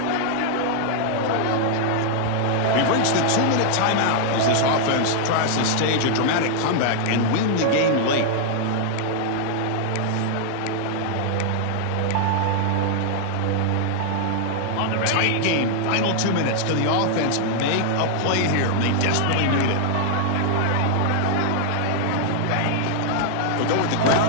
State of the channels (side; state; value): both; different; correlation -0.01